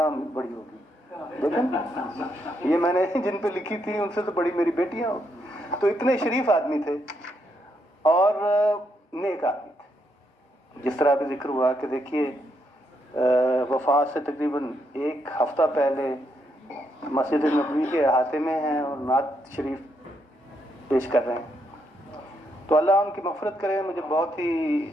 بڑی ہو گئی، لیکن یہ میں نے جن پہ لکھی تھی ان سے تو بڑی میری بیٹیاں ہو۔ تو اتنے شریف آدمی تھے اور نیک آدمی تھے۔ جس طرح بھی ذکر ہوا کہ دیکھیے وفات سے تقریباً 1 ہفتہ پہلے مسجد نبوی کے احاطے میں ہیں اور نعت شریف پیش کر رہے ہیں۔ تو اللہ ان کی مغفرت کرے۔ مجھے بہت ہی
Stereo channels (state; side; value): normal; both; correlation 0.77